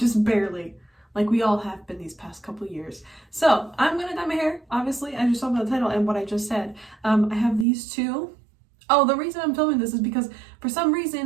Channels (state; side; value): drops out; left; at 7.7 s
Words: barely, like we all have been these past couple years. So I'm gonna dye my hair, obviously, as you saw by the title and what I just said. I have these two. Oh, the reason I'm filming this is because for some